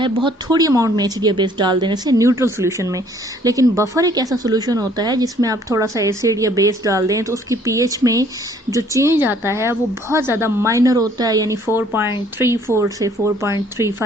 बहुत थोड़ी अमाउंट में एसिड या बेस डाल देने से न्यूट्रल सॉल्यूशन में। लेकिन बफर एक ऐसा सॉल्यूशन होता है जिसमें आप थोड़ा सा एसिड या बेस डाल दें तो उसकी पीएच में जो चेंज आता है वो बहुत ज़्यादा माइनर होता है, यानी 4.34 से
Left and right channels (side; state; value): both; normal; correlation 0.60